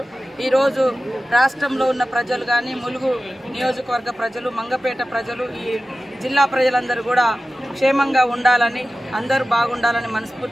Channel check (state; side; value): normal; both; correlation 0.95